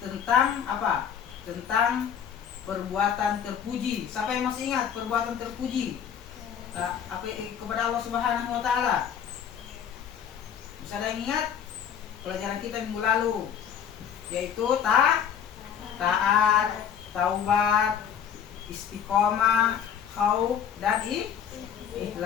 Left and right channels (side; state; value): right; quieter; 8.3 dB